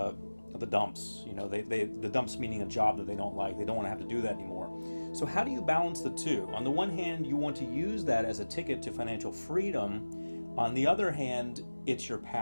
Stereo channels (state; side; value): inverted; both; correlation -1.00